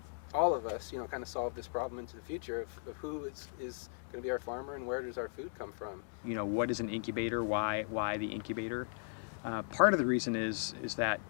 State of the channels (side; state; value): right; silent; digital silence